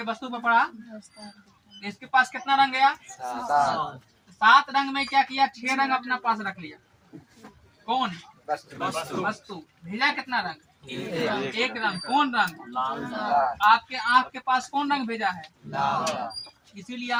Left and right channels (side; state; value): both; identical; correlation 1.00